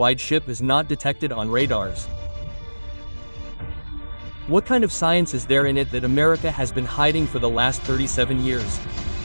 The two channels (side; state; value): both; inverted; correlation -1.00